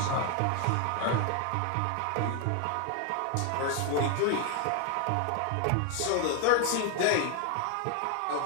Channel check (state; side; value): different; both; correlation 0.00